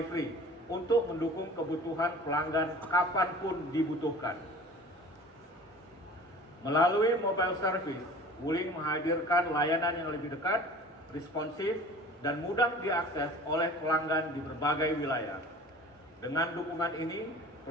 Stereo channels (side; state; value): both; normal; correlation 0.43